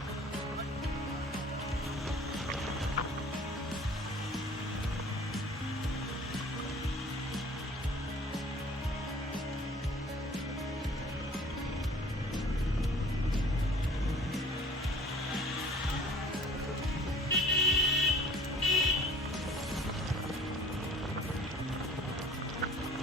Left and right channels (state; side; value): normal; both; correlation 0.50